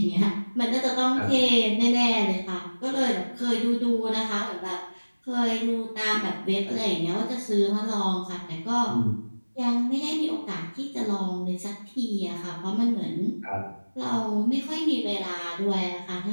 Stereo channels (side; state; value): both; inverted; correlation -1.00